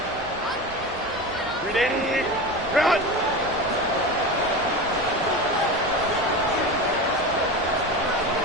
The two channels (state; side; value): normal; both; correlation 0.26